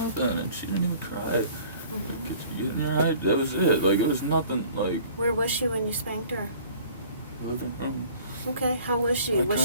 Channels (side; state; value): both; inverted; correlation -0.51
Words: and she didn't even cry. Mhm. Yeah, that was it. Like it was nothing. Like Where was she when you spanked her? living room. Okay, how was she? I Was she